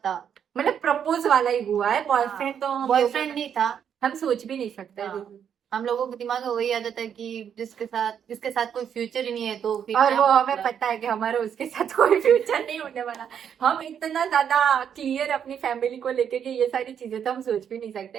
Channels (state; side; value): quieter; left; 8.3 dB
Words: मतलब प्रपोज वाला ही हुआ है, बॉयफ्रेंड तो हम बॉयफ्रेंड नहीं था। हम सोच भी नहीं सकते। हाँ। हम लोगों के दिमाग में वही आदत है कि जिसके साथ कोई फ्यूचर ही नहीं है, तो फिर और क्या वो हमें मतलब? पता है कि हमारा उसके साथ कोई फ्यूचर नहीं होने वाला। हम इतना ज्यादा क्लियर अपनी फैमिली को लेके कि ये सारी चीजें तो हम सोच भी नहीं